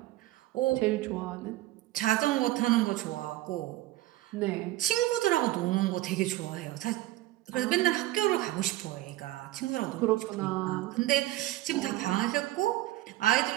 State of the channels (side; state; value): left; quieter; 16.8 dB